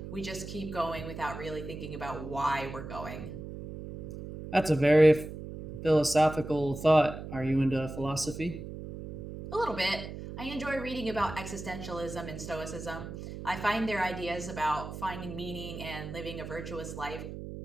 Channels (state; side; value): noise; right; hum, 9 dB below the sound